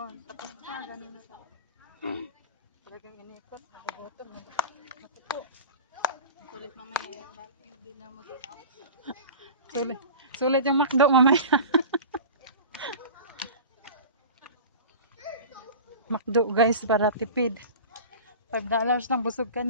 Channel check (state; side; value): inverted; both; correlation -0.36